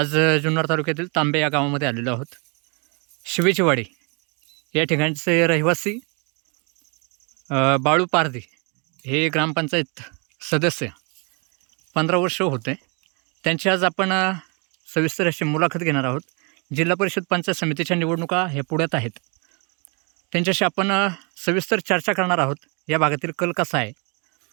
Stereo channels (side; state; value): left; quieter; 33.8 dB